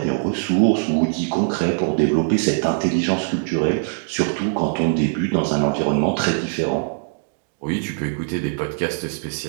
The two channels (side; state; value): left; silent; digital silence